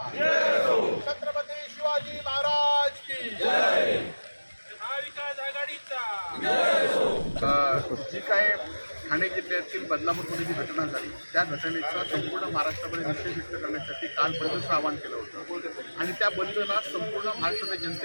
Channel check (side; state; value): both; inverted; correlation -1.00